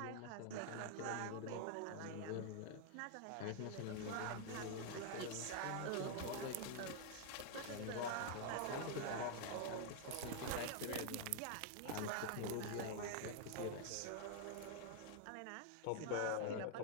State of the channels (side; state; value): both; different; correlation 0.00